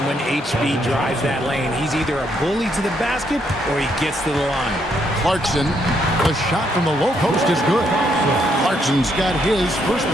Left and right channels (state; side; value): normal; both; correlation 0.74